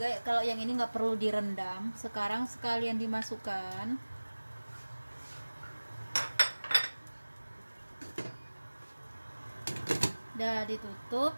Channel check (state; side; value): inverted; both; correlation -1.00